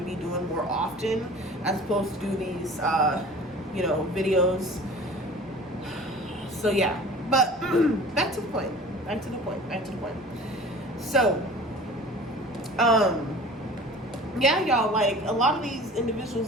be doing more often, as opposed to do these, videos. So yeah, but back to the point. So, yeah, y'all, like, a lot of these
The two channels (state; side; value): normal; both; correlation 0.42